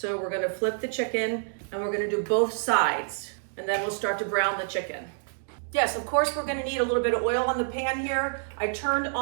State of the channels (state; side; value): silent; left; digital silence